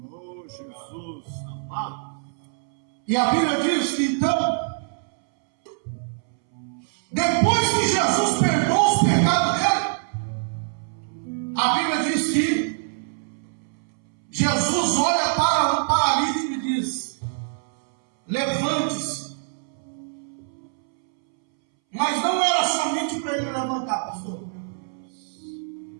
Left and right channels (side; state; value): left; silent; 62 dB below the other